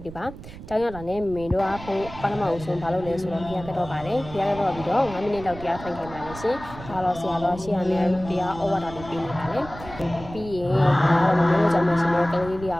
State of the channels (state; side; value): noise; right; rumble, 14 dB below the sound